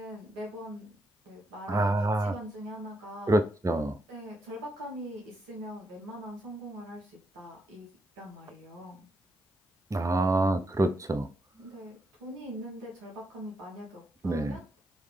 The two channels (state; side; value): normal; both; correlation 0.80